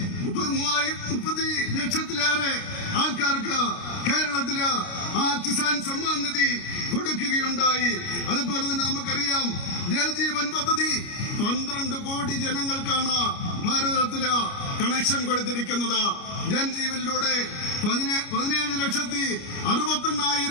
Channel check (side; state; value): right; late; 29 ms